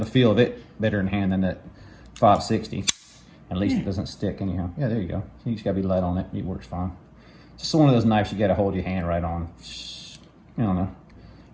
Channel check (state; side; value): identical; both; correlation 1.00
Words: feel of it better in hand than that 560. At least it doesn't stick anyhow. Yeah, there you go. You just gotta be light on it. It works fine. It's just one of those knives you gotta hold your hand right on. I don't know.